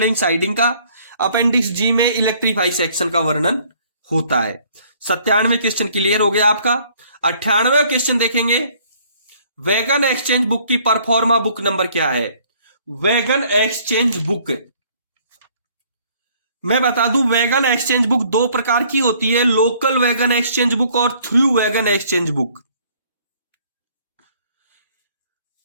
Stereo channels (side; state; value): both; inverted; correlation -0.60